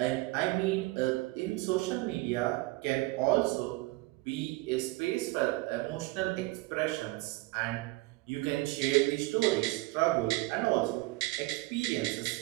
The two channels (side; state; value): left; quieter; 21.3 dB